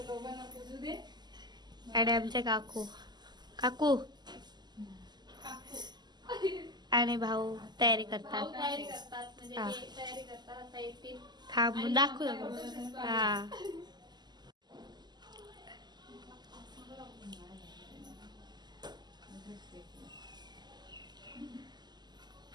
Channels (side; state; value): left; late; 0.21 ms